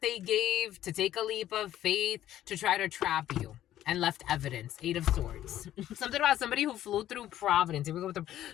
gave to take a leap of faith to try to trap you and left evidence. 8 of Swords. Something about somebody who flew through Providence. Here we go with the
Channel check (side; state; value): right; quieter; 12.5 dB